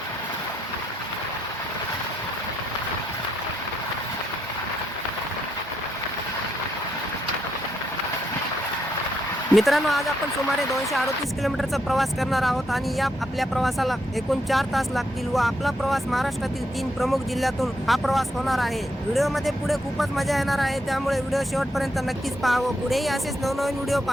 मित्रांनो, आज आपण सुमारे 238 किलोमीटरचा प्रवास करणार आहोत आणि या आपल्या प्रवासाला एकूण 4 तास लागतील व आपला प्रवास महाराष्ट्रातील 3 प्रमुख जिल्ह्यातून हा प्रवास होणार आहे. व्हिडिओमध्ये पुढे खूपच मजा येणार आहे, त्यामुळे व्हिडिओ शेवटपर्यंत नक्कीच पाहावं. पुढेही असेच नवनवीन व्हिडिओ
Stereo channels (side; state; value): both; normal; correlation 0.78